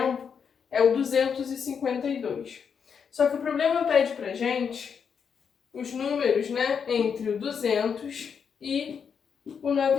é o 252. Só que o problema pede pra gente os números, né, entre o 200 e o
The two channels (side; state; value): right; quieter; 6.7 dB